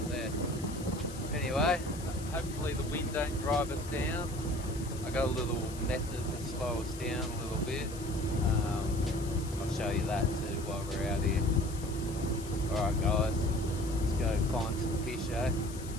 there. Anyway, hopefully the wind don't drive us down. I got a little method to slow us down a little bit. I'll show you that too while we're out here. Alright guys, let's go find some fish, eh?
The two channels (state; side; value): noise; left; hiss, 15 dB below the sound